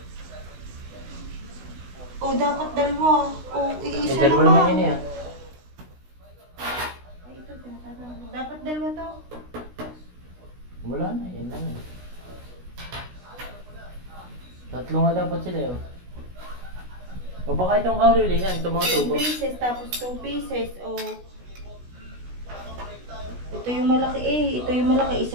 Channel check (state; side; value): late; left; 16 ms